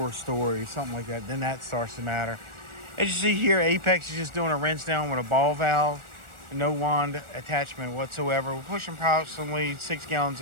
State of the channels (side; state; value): left; late; 1.4 ms